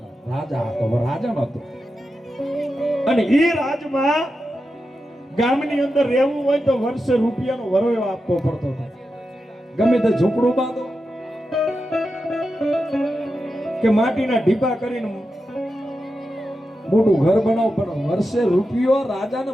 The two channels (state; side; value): normal; both; correlation 0.90